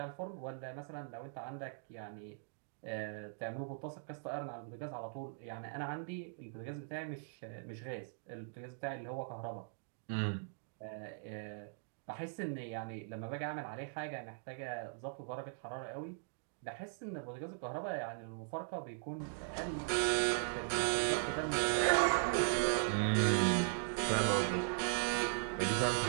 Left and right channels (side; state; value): left; silent; digital silence